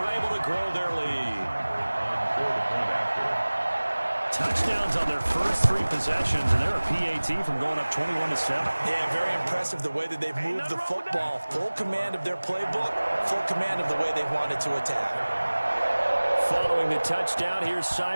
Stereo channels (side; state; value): both; inverted; correlation -1.00